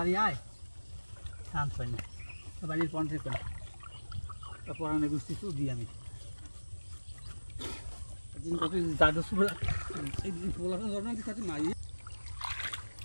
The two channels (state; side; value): inverted; both; correlation -1.00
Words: আয় শান্ত হয় না বাড়ির পঞ্চে করে পড়ানো গুছি শুধু দিই আমি দাদু পোলাটা জন্ম কাছে মাই